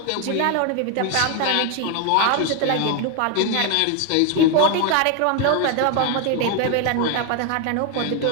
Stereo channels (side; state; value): both; different; correlation 0.01